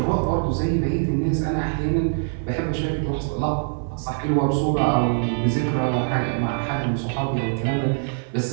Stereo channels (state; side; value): silent; left; 58 dB below the other